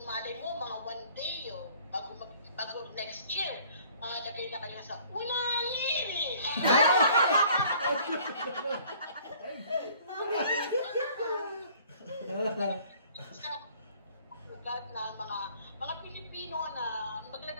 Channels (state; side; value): inverted; both; correlation -0.55